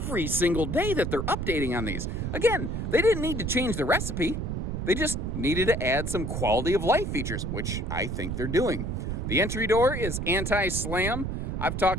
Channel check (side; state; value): right; noise; rumble, 3 dB below the sound